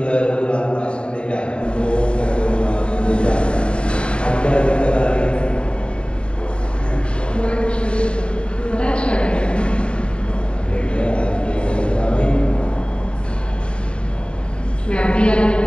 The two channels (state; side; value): late; right; 0.054 ms